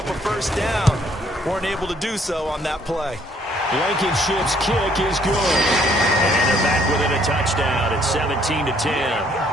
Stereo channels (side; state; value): both; normal; correlation 0.65